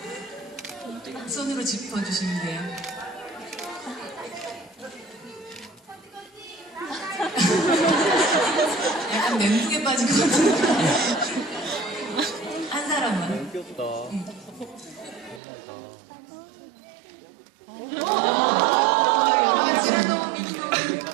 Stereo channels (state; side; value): drops out; left; at 15.4 s